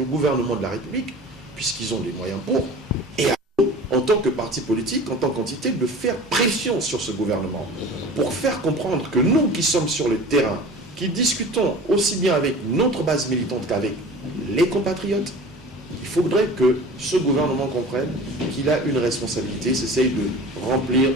gouvernement de la République, puisqu'ils ont les moyens pour, et à nous, en tant que parti politique, en tant qu'entité, de faire pression sur ce gouvernement, pour faire comprendre que nous qui sommes sur le terrain, qui discutons aussi bien avec notre base militante qu'avec les compatriotes, il faudrait que ce gouvernement comprenne qu'il a une responsabilité, s'essaye de remplir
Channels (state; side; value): normal; both; correlation 0.39